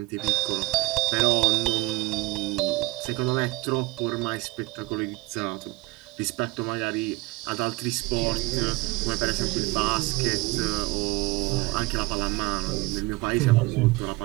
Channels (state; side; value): quieter; left; 21.5 dB